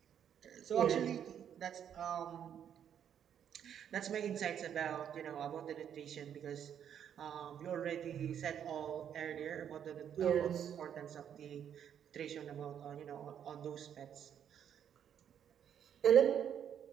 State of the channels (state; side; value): quieter; left; 9.0 dB